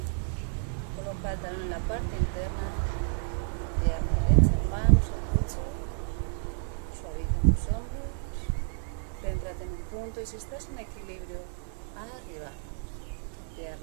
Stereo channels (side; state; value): left; silent; 57 dB below the other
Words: Coloca el talón en la parte interna. Pierna derecha, manos al pecho. Suaviza tus hombros. Céntrate en un punto y si estás en equilibrio, arriba.